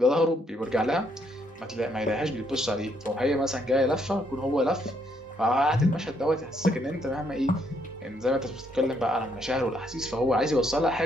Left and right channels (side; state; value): both; normal; correlation 0.72